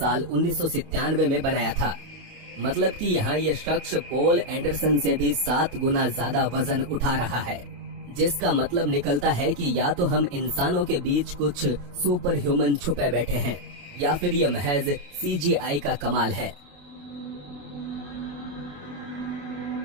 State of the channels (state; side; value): late; left; 28 ms